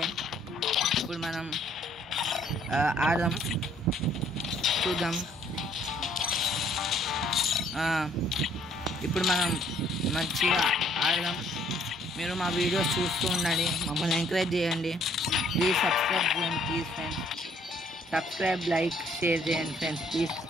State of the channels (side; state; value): both; normal; correlation 0.63